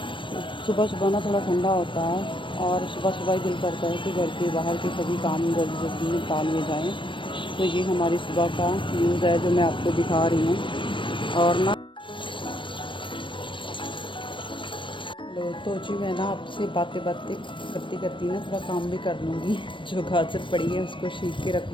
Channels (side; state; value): right; late; 0.24 ms